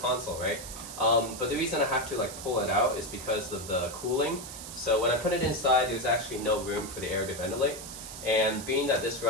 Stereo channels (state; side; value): noise; right; hiss, 11 dB below the sound